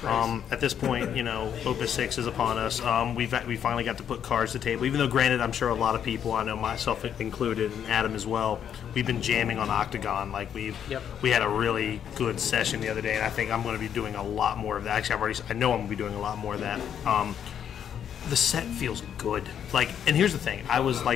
At this point, Opus 6 is upon us. We finally got to put cards to the table. Even though, granted, I'm sure a lot of people, I know myself included, and Adam as well, we've been jamming on Octagon. Like we had a really good session the other day, and I think I'm going to be doing a lot more of that. Actually, I know I'm going to be doing a lot more of that. The set feels good. And here's the thing: I was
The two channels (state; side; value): quieter; right; 8.9 dB